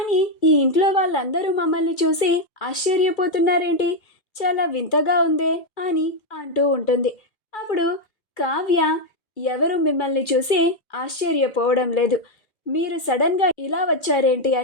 ఈ ఇంట్లో వాళ్ళందరూ మమ్మల్ని చూసి ఆశ్చర్యపోతున్నారేంటి, చాలా వింతగా ఉందే అని అంటూ ఉంటుంది. అప్పుడు కావ్య, ఎవరు మిమ్మల్ని చూసి ఆశ్చర్యపోవడం లేదు, మీరు సడన్గా ఇలా వచ్చారేంటి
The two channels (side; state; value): right; late; 2.3 ms